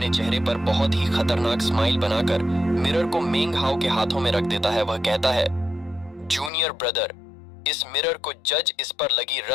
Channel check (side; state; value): right; drops out; at 6.5 s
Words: चेहरे पर बहुत ही खतरनाक स्माइल बनाकर मिरर को मेंग हाओ के हाथों में रख देता है। वह कहता है, जूनियर ब्रदर, इस मिरर को जज इस पर लगी